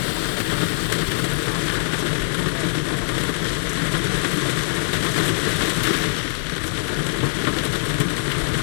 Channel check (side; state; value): right; silent; 64 dB below the other